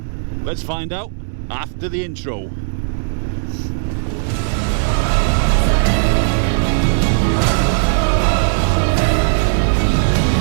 Let's find out after the intro.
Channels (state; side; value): silent; left; digital silence